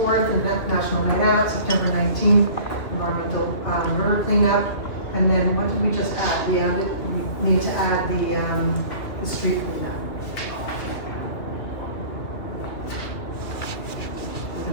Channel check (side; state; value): right; late; 2.7 ms